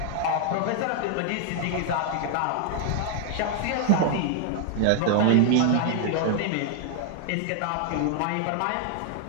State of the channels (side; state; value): both; different; correlation 0.00